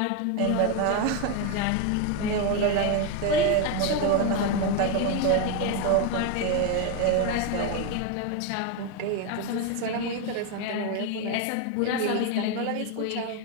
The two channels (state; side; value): different; both; correlation 0.02